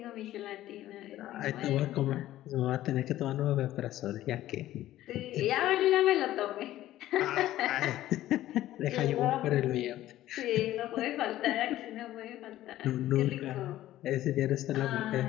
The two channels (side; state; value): right; quieter; 14.2 dB